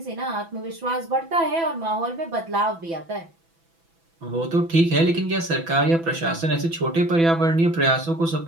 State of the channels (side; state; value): left; late; 6.0 ms